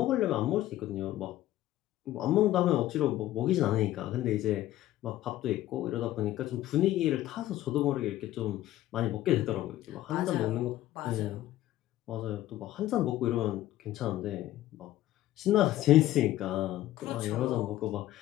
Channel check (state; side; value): quieter; right; 14.5 dB